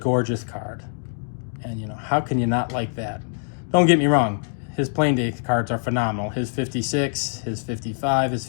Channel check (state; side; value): silent; right; digital silence